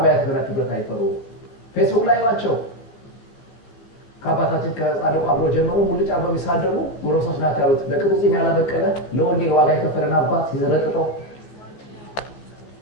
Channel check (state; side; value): late; right; 15 ms